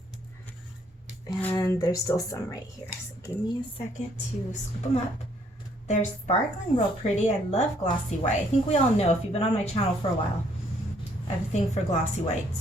And there's still some right here. So give me a second to scoop them up. They're sparkling real pretty. I love glossy white. I think we all know, if you've been on my channel for a while, I have a thing for glossy white.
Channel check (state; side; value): normal; both; correlation 0.66